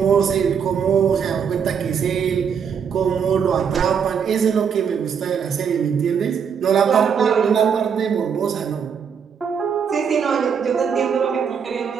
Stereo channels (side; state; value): left; quieter; 7.0 dB